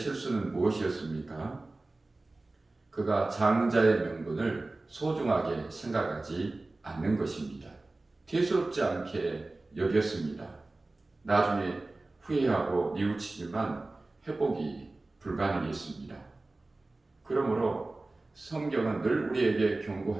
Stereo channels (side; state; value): left; quieter; 3.1 dB